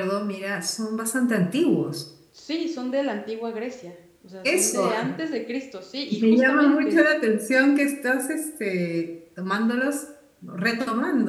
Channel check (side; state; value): both; identical; correlation 1.00